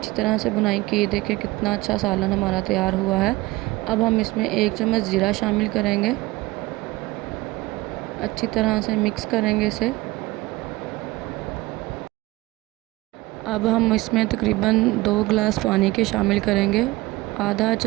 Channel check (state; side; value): quieter; left; 20.1 dB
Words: तरह से भुनाई की। देखें कितना अच्छा सालन हमारा तैयार हुआ है। अब हम इसमें 1 चम्मच ज़ीरा शामिल करेंगे। अच्छी तरह से मिक्स करेंगे इसे। अब हम इसमें तकरीबन 2 गिलास पानी के शामिल करेंगे। आधा